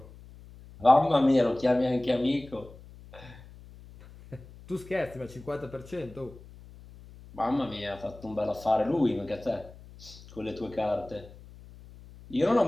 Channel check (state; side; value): noise; left; hum, 20 dB below the sound